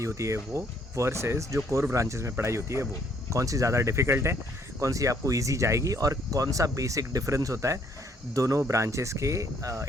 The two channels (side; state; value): both; normal; correlation 0.66